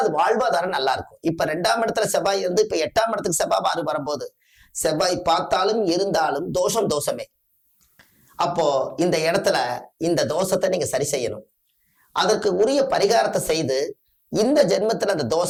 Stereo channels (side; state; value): both; identical; correlation 1.00